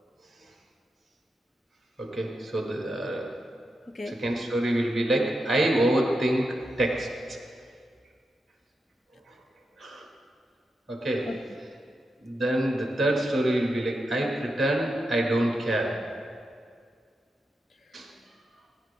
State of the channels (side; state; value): both; normal; correlation 0.87